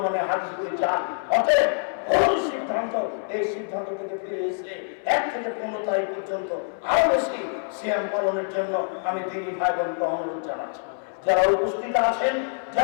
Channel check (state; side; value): silent; right; 61 dB below the other